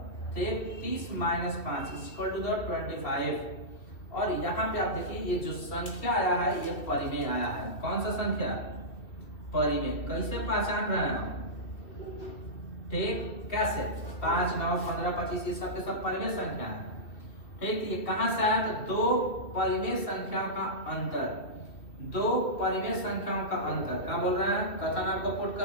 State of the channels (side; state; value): right; late; 2.5 ms